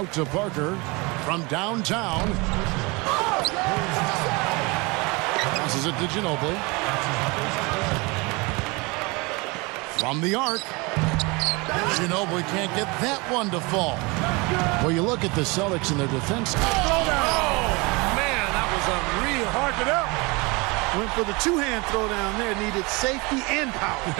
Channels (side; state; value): left; quieter; 26.6 dB